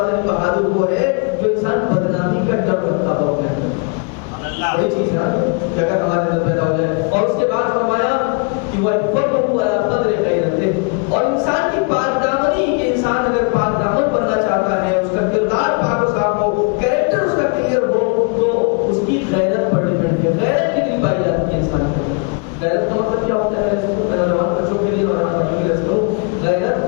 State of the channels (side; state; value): right; quieter; 36.8 dB